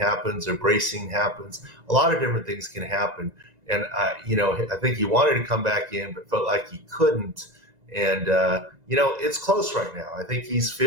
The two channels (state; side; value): late; left; 1.7 ms